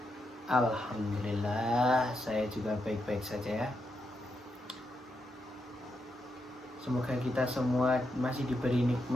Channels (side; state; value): both; normal; correlation 0.83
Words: Alhamdulillah, saya juga baik-baik saja ya. Semoga kita semua masih diberi